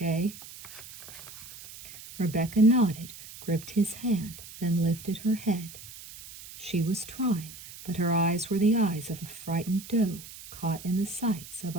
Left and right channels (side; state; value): right; noise; hiss, 15 dB below the sound